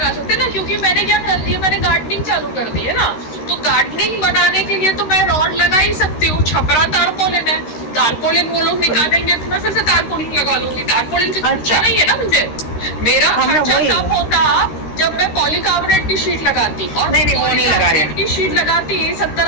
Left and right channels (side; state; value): right; late; 13 ms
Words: सकते ना, क्योंकि मैंने क्या कर दिया, मैंने गार्डनिंग चालू कर दी है ना। तो गार्डनिंग बनाने के लिए तो मैं रॉड लगा ही सकती हूँ। छपरा तारपोलिन है, तारपोलिन वो लोग निकालेंगे तो मैं फिर से तारपोलिन लगा लूंगी। तारपोलिन का खर्चा नहीं है ना मुझे, मेरा खर्चा तब होता जब मैं पॉलीकार्बोनेट की शीट लगाती, और वो नहीं लगा रहे की शीट लगाती